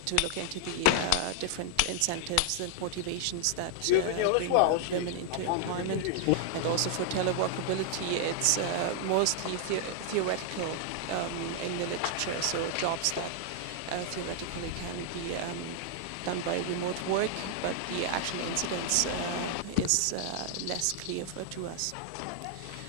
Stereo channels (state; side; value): different; both; correlation -0.01